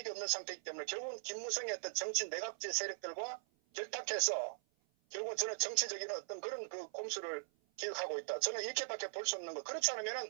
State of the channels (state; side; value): silent; left; 51 dB below the other